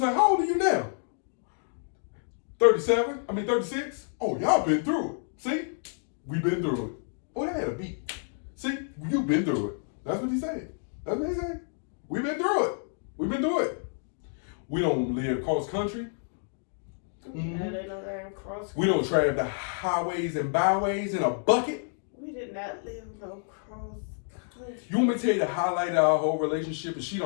like, how old are you now? 36? Oh, y'all been through it. See? We been through it. Oh, that had a beat. See? You been through it. That's what he said. That's what he said. We been through it. We been through it. We don't live cross country. No, they don't live cross country. We don't travel the highways and byways in a bucket. We did not live no cross country. You want me to tell you the highlight of our whole relationship? And she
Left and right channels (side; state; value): right; silent; digital silence